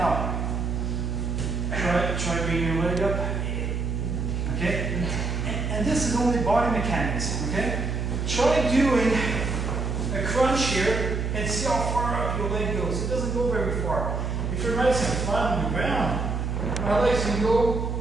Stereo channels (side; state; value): right; noise; hum, 1 dB below the sound